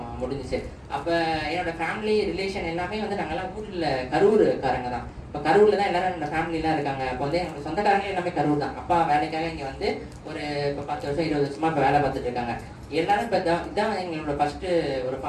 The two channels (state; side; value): identical; both; correlation 1.00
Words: முடிஞ்சிச்சு. அப்ப என்னோட ஃபேமிலி ரிலேஷன் எல்லாமே வந்து நாங்கெல்லாம் ஊர்ல கரூர்காரங்க தான். இப்ப கரூர்ல தான் எல்லாரும் என்னோட ஃபேமிலி எல்லாம் இருக்காங்க. இப்போ வந்து எங்களோட சொந்தக்காரங்க எல்லாமே கரூர் தான். அப்பா வேலைக்காக இங்க வந்து ஒரு இப்ப 10 வருஷம் 20 வருஷமா இப்ப வேலை பார்த்துட்டு இருக்காங்க. எல்லாரும் இப்ப இதான் எங்களோட ஃபர்ஸ்ட் ஒரு